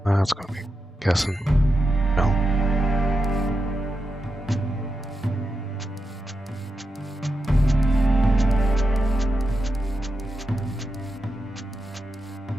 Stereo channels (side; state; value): both; normal; correlation 0.88